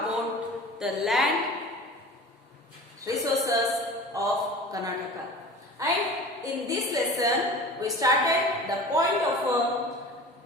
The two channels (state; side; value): normal; both; correlation 0.38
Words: the land resources of Karnataka. And in this lesson, we started the point of